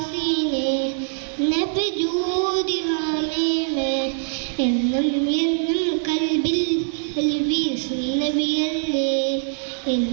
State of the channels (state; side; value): silent; left; digital silence